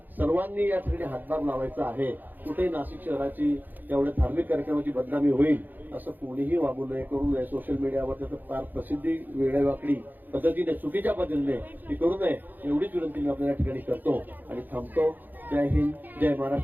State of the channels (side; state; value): left; late; 0.087 ms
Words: सर्वांनी या ठिकाणी हातभार लावायचा आहे. कुठेही नाशिक शहराची एवढ्या धार्मिक कार्यक्रमाची बदनामी होईल असं कोणीही वागू नये, करू नये. सोशल मीडियावर त्याचं फार प्रसिद्धी वेगळ्यावाकडी पद्धतीने, चुकीच्या पद्धतीने ती करू नये एवढीच विनंती मी आपल्या या ठिकाणी करतो आणि थांबतो. जय हिंद, जय